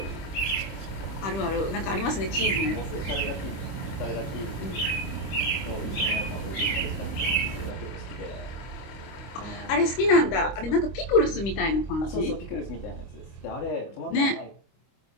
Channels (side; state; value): right; late; 26 ms